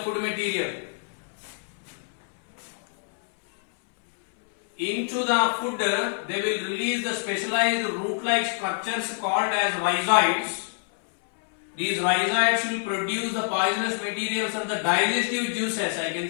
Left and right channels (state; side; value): silent; right; 61 dB below the other